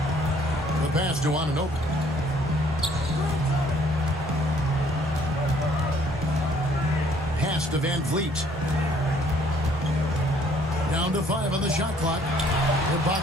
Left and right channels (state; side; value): normal; both; correlation 0.62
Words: The pass to Anunoby. Pass to Van Vliet. Down to 5 on the shot clock.